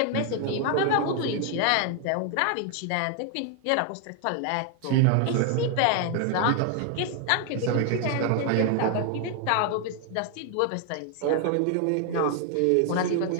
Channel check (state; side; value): different; both; correlation 0.00